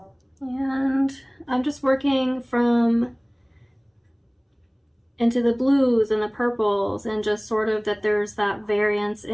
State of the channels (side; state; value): both; identical; correlation 1.00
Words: And I'm just working from into the blues and the purples, and just sort of that there's that variance